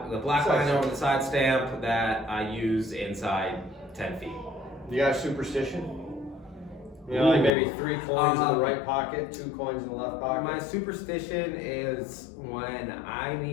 Side line stamp. over the side stamp that I use inside 10 feet. You got a superstition? You know, like maybe 3 coins in the right pocket, 2 coins in the left pocket. My superstition is when I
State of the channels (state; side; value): drops out; right; at 7.5 s